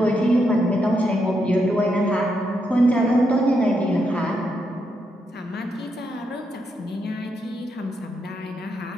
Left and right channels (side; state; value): both; normal; correlation 0.81